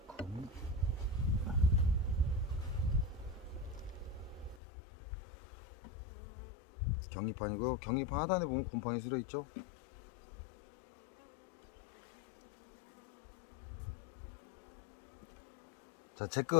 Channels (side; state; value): right; drops out; at 4.6 s